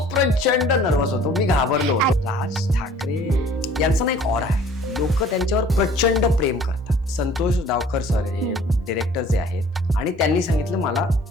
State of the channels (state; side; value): normal; both; correlation 0.52